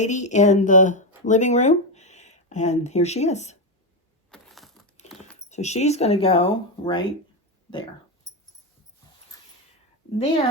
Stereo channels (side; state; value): both; normal; correlation 0.09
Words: in the living room. And here she is. So she's going to go right there.